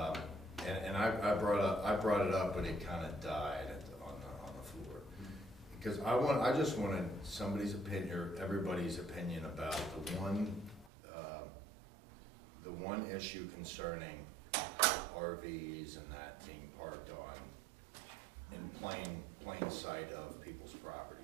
And I brought it up, but it kind of died on the floor. Because I just wanted somebody's opinion, or everybody's opinion about the one issue concerning RVs and that being parked in plain sight of people's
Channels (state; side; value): drops out; left; at 10.9 s